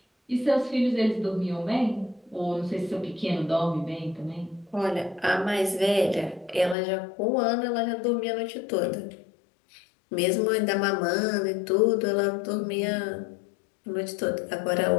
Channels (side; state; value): right; drops out; at 6.8 s